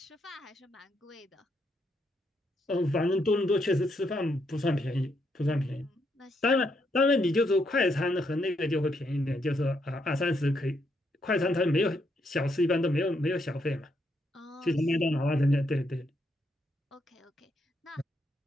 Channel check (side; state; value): both; normal; correlation 0.77